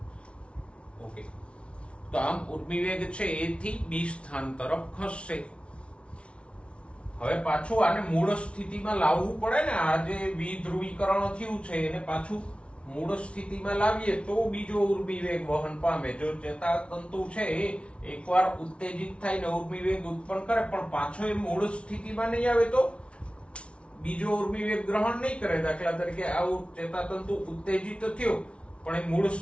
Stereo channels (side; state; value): right; late; 0.060 ms